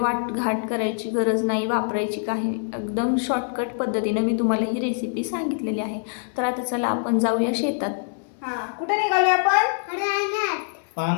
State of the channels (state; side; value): silent; right; digital silence